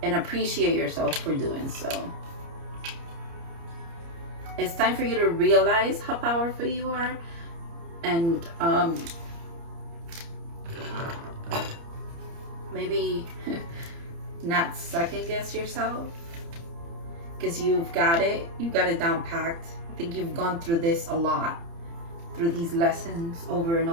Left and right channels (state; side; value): late; left; 30 ms